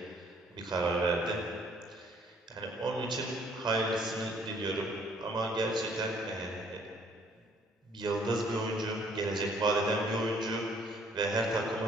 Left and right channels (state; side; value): normal; both; correlation 0.62